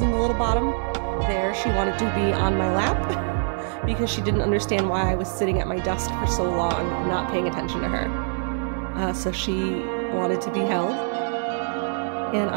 in the little bottom there. She wanted to be on my lap because she didn't understand why I was sitting at my desk for so long not paying attention to her. so she wanted to be held, and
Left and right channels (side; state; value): left; silent; 62 dB below the other